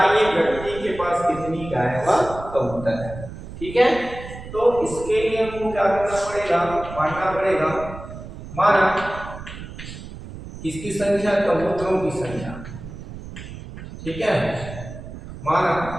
व्यक्ति के पास कितनी गाय व कबूतर है। ठीक है, तो इसके लिए हमको क्या करना पड़ेगा, मानना पड़ेगा, माना किसकी संख्या, कबूतरों की संख्या। ठीक है, माना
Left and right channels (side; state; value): right; noise; rumble, 12 dB below the sound